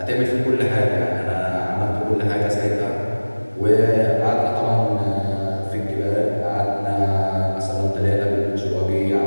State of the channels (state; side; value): inverted; both; correlation -1.00